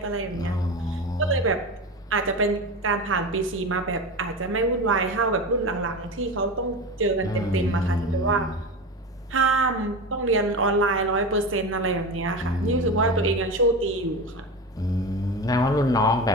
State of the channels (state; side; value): normal; both; correlation 0.25